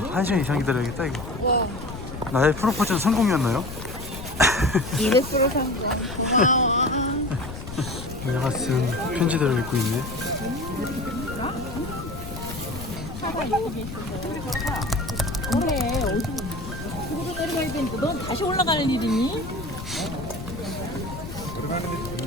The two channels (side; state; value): left; noise; rumble, 10 dB below the sound